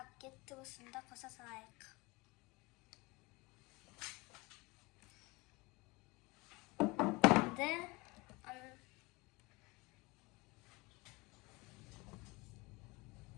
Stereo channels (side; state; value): right; quieter; 24.7 dB